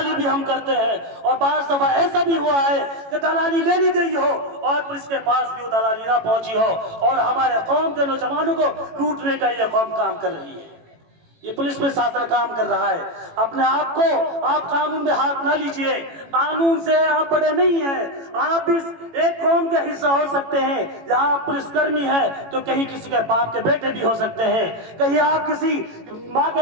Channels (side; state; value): left; late; 18 ms